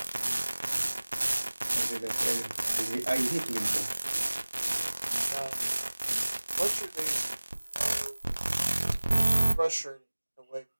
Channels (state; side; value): inverted; both; correlation -1.00